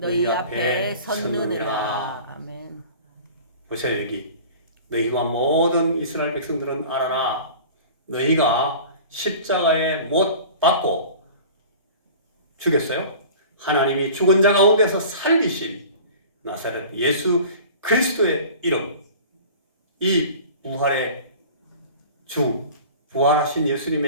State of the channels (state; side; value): inverted; both; correlation -0.41